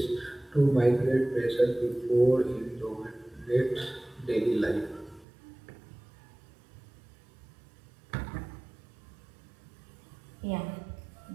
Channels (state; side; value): drops out; left; at 5.2 s